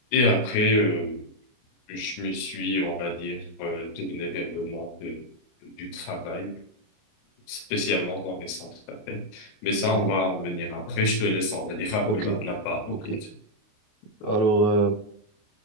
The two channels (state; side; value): late; right; 29 ms